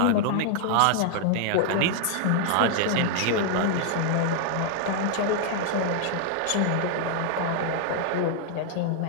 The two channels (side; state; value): both; different; correlation 0.00